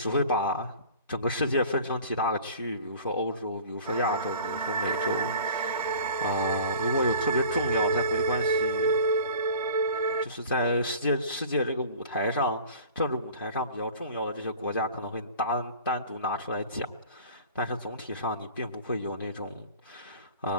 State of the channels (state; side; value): inverted; both; correlation -0.44